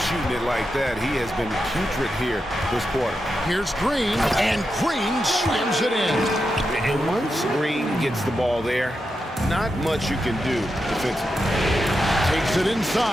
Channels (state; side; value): normal; both; correlation 0.87